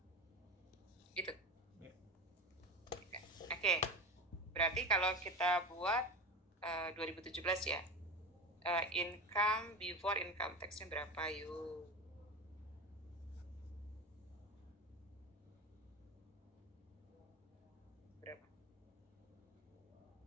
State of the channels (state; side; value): normal; both; correlation 0.27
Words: gitu. Ya. Oke. Berarti kalau kita buat 2017 ya. Income before income tax-nya berapa yuk? Berapa?